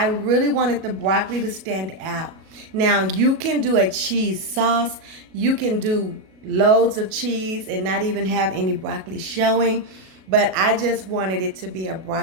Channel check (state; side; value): late; left; 37 ms